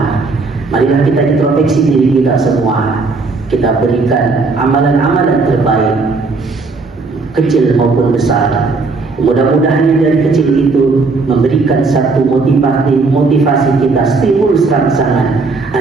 Marilah kita introspeksi diri kita semua. Kita berikan amalan-amalan terbaik, kecil maupun besar. Mudah-mudahan dari kecil itu memberikan satu motivasi kita, stimulus rangsangan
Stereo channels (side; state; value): left; quieter; 4.0 dB